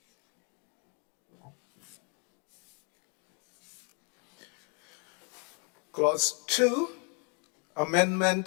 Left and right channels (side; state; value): right; quieter; 36.7 dB